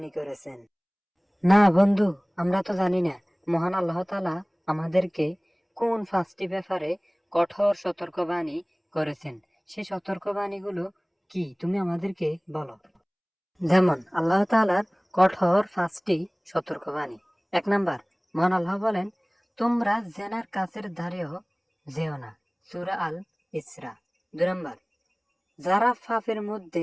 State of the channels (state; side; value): identical; both; correlation 1.00